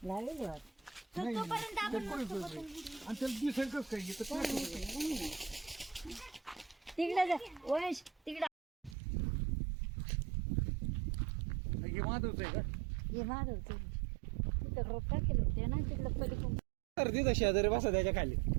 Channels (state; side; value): drops out; left; at 9.0 s